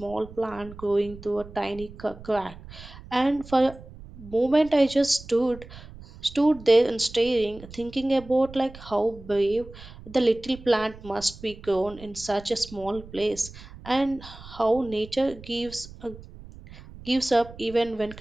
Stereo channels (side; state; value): right; noise; rumble, 17 dB below the sound